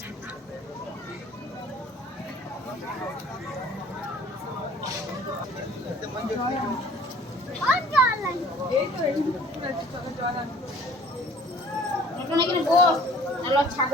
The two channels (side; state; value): both; normal; correlation 0.51